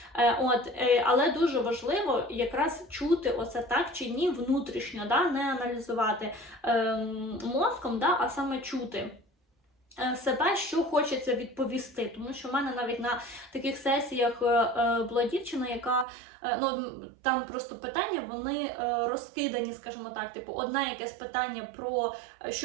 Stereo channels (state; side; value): drops out; left; at 16.1 s